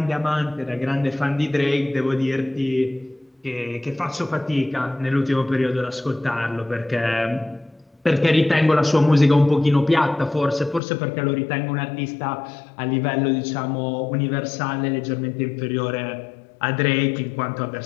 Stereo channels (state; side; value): drops out; right; at 10.8 s